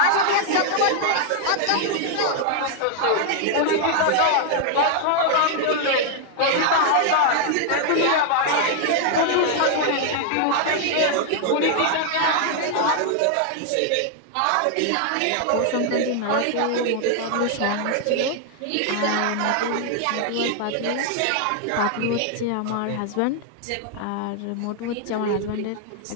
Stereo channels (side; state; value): both; different; correlation 0.00